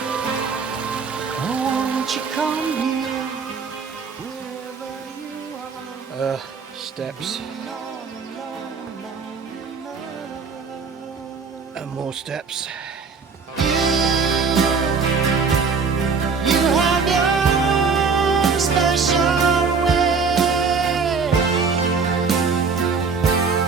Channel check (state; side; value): quieter; left; 5.2 dB